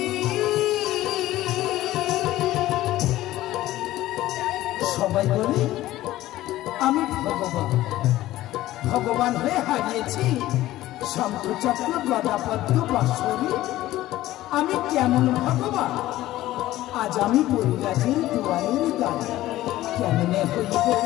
সবাই বলে আমি ভগবান, ভগবান হয়ে হারিয়েছি শঙ্খচক্র গদাপদ্ম বাঁশরি। আমি কেমন ভগবান, আজ আমি পরিরাজের দুয়ারের দ্বারে কেমনে হইব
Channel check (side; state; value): right; quieter; 15.5 dB